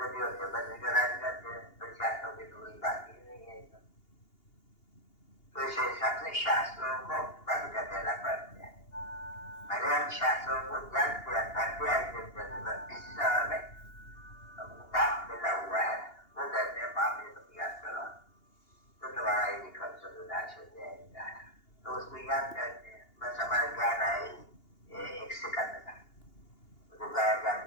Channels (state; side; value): late; right; 2.8 ms